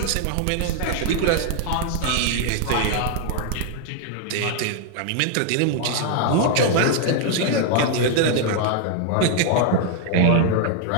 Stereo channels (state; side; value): different; both; correlation 0.00